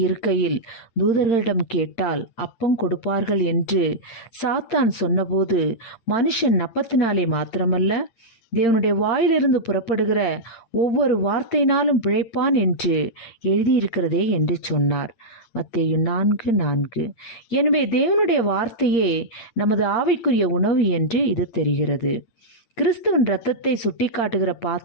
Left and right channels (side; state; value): right; late; 8.7 ms